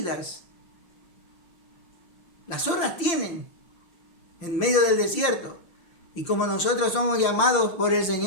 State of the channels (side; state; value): right; late; 5.8 ms